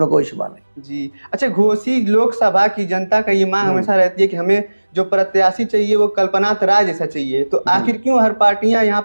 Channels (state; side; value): inverted; both; correlation -1.00